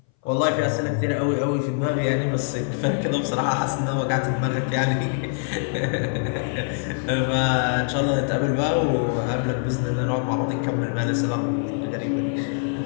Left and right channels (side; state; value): right; silent; 60 dB below the other